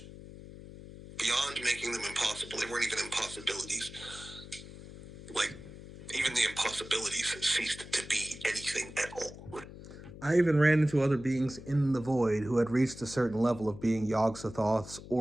Beyond making them impossible. They weren't even impossibilities. Like, even the impossibilities ceased to be anything at all. I even ran into other beings in the void who had reached a certain level of being Yog-Sothoths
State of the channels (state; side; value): noise; left; hum, 15 dB below the sound